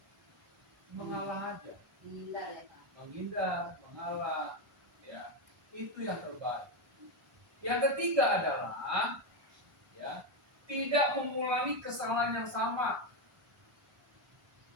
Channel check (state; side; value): late; left; 1.3 ms